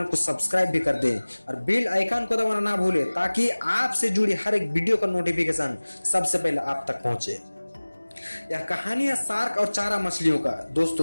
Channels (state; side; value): inverted; both; correlation -1.00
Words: को सब्सक्राइब भी कर दें और बेल आइकन को दबाना ना भूलें ताकि आपसे जुड़ी हर एक वीडियो का नोटिफिकेशन सबसे पहले आप तक पहुंचे। यह कहानी है शार्क और चारा मछलियों का।